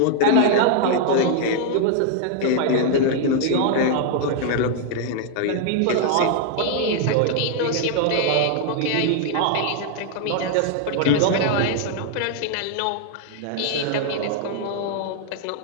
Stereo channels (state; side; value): different; both; correlation -0.01